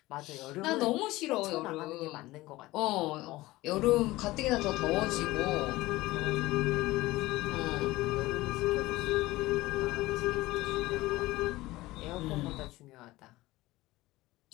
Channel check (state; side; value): quieter; right; 18.7 dB